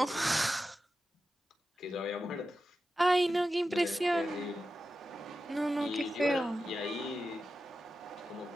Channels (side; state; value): both; normal; correlation 0.92